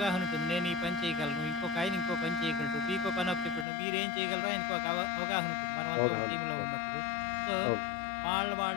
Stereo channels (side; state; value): right; drops out; at 3.7 s